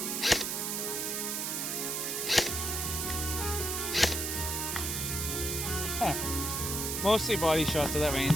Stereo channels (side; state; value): right; noise; hiss, 1 dB below the sound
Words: Huh. Mostly body shots at that